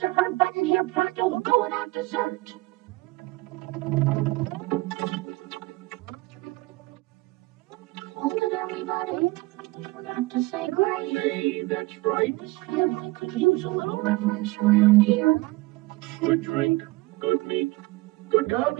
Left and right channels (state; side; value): quieter; left; 21.5 dB